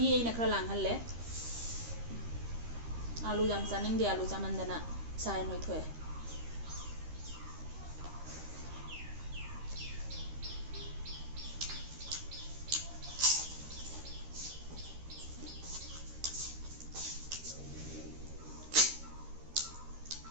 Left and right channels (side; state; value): left; late; 13 ms